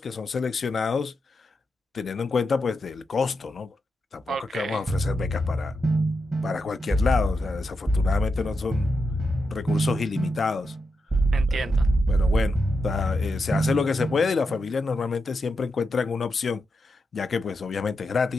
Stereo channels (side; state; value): both; normal; correlation 0.87